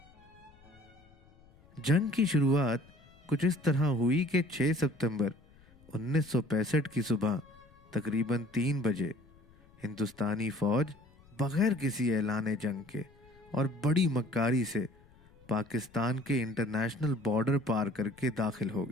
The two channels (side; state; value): left; noise; rumble, 27 dB below the sound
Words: جنگ کی شروعات کچھ اس طرح ہوئی کہ 6 ستمبر 1965 کی صبح تقریباً 3 بجے ہندوستانی فوج بغیر کسی اعلان جنگ کے اور بڑی مکاری سے پاکستان کے انٹرنیشنل بارڈر پار کر کے داخل ہو